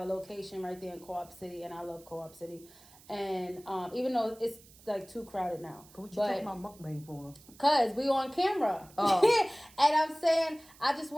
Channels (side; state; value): right; noise; hiss, 24 dB below the sound